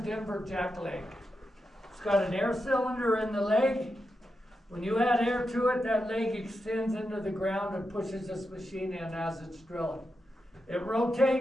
jackleg. It's got an air cylinder in the leg. When you add air to it, that leg extends into the ground and pushes this machine in as it's drilling. It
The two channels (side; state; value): both; normal; correlation 0.88